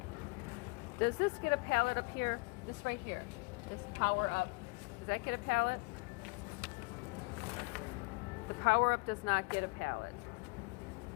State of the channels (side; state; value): right; quieter; 27.4 dB